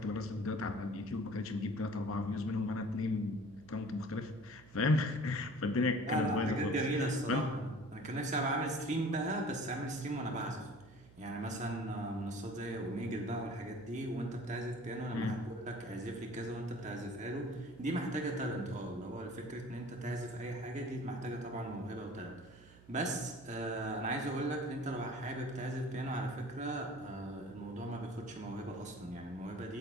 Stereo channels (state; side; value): noise; right; hum, 22 dB below the sound